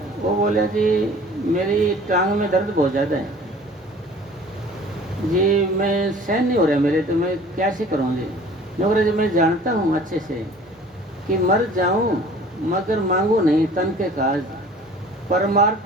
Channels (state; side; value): normal; both; correlation 0.48